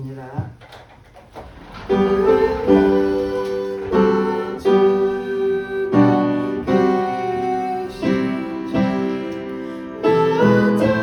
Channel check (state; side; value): identical; both; correlation 1.00